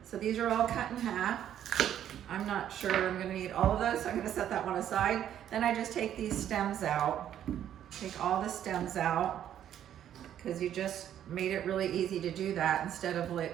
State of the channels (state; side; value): quieter; left; 10.5 dB